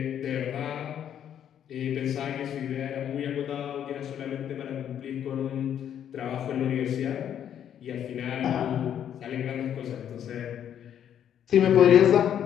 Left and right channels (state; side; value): quieter; right; 9.6 dB